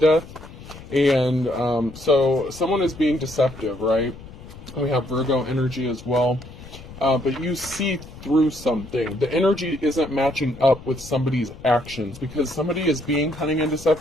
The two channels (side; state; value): left; noise; rumble, 16 dB below the sound